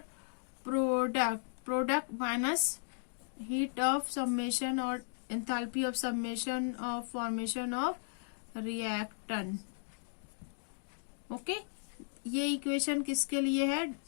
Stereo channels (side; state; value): right; silent; digital silence